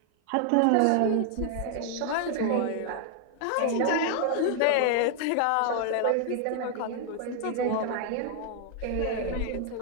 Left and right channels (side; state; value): both; different; correlation 0.00